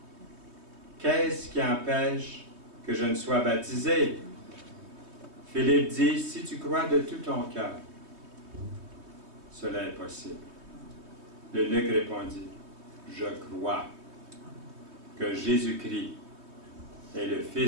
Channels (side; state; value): left; late; 3.2 ms